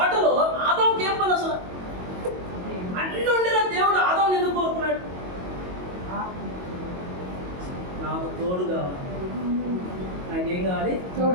ఆదాముకి ఏం పని అసలు? అన్ని ఉండిన దేవుడు ఆదాముని ఎందుకు కోరుకున్నాడు? నాకు తోడు కావాలి. నాకేం కావాలి?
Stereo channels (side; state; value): left; late; 22 ms